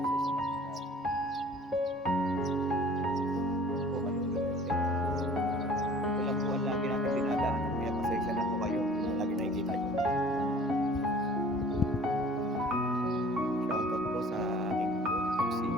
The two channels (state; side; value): normal; both; correlation 0.49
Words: sa mga tao. Po manunulit. Ito lang po ang lagi natin dinadaanan. Kaya pasensya na po kayo kung lagi nakikita nyo. Shoutout po sa aking